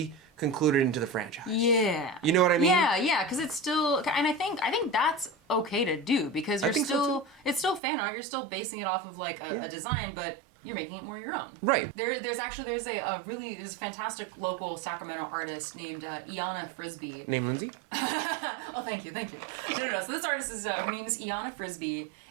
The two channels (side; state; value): left; drops out; at 7.8 s